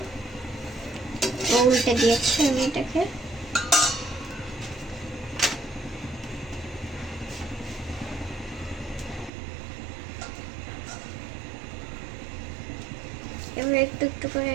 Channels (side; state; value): left; drops out; at 9.3 s